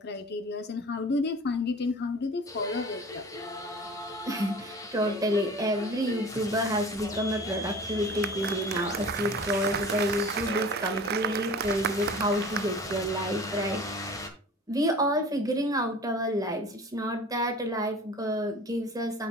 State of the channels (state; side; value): normal; both; correlation 0.41